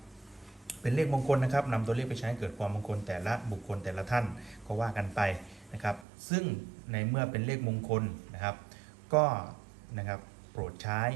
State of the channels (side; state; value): left; drops out; at 6.1 s